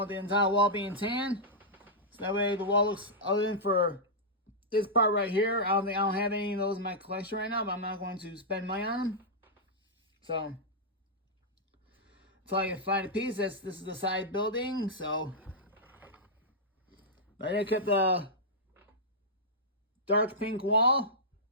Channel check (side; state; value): both; normal; correlation -0.10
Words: the entire wall being tan. So that way the wall looks, other than for this part right here, I don't have any of those in my collection right now, but I'm not going to spend money on them. So until I can find a piece, this is the side building. So but I kept the dark pink wall.